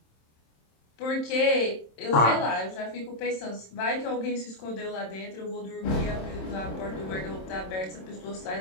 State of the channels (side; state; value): right; late; 27 ms